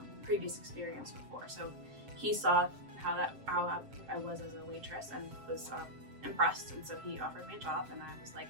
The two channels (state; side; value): late; left; 7.6 ms